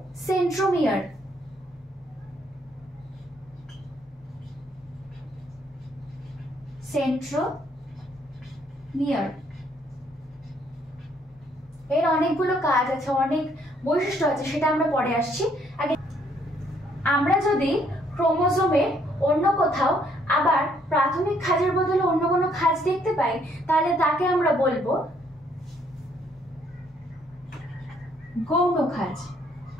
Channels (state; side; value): normal; both; correlation 0.67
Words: সেন্ট্রোমিয়ার। সেন্ট্রোমিয়ার এর অনেকগুলো কাজ আছে, অনেক বৈশিষ্ট্য আছে, সেটা আমরা পরে আসছি। আগে আমরা যদি ক্রোমোজোমের অন্য কোথাও আবার প্রাথমিক খাঁজের বদলে অন্য কোনো খাঁজ দেখতে পাই, তাহলে তাকে আমরা বলবো গৌণ খাঁজ।